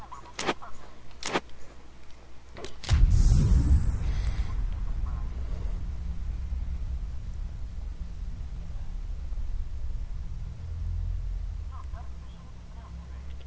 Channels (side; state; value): both; identical; correlation 1.00